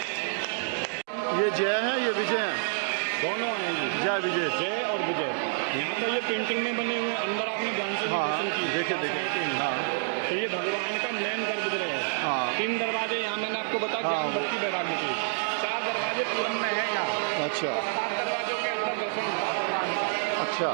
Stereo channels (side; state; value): left; silent; digital silence